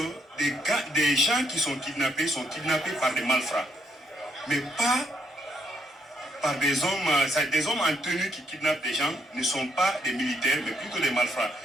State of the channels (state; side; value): normal; both; correlation 0.73